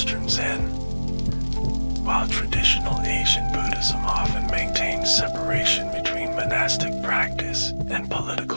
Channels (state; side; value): inverted; both; correlation -1.00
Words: Zen. While traditional Asian Buddhism often maintains separation between monastic practice and